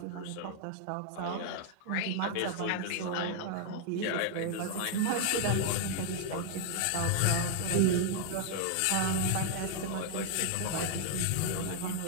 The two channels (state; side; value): different; both; correlation 0.00